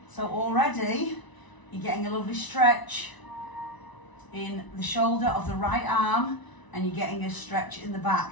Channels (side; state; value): right; late; 1.0 ms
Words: So already you're getting a lovely stretch in the shoulder of the right arm, and you're getting a stretch in the